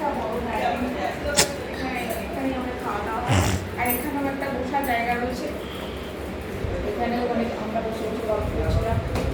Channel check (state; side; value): identical; both; correlation 1.00